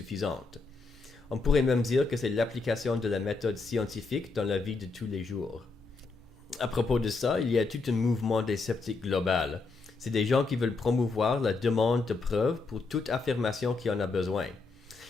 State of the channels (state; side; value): quieter; right; 3.9 dB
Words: On pourrait même dire que c'est l'application de la méthode scientifique dans la vie de tous les jours. À propos de ça, il y a tout un mouvement des sceptiques global. C'est des gens qui veulent promouvoir la demande de preuves pour toute affirmation qui en a besoin.